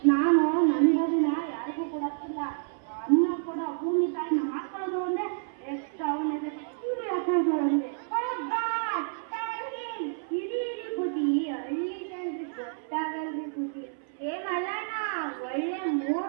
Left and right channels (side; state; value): left; silent; 58 dB below the other